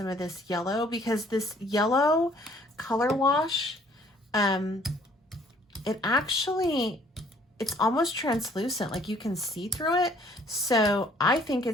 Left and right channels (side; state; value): both; normal; correlation 0.59